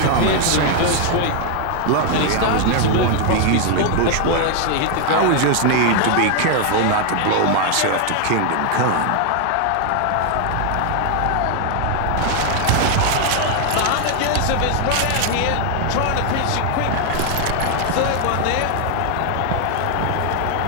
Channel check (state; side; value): different; both; correlation 0.00